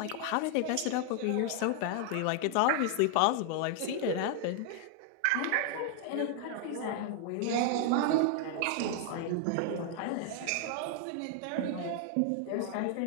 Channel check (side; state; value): both; different; correlation 0.00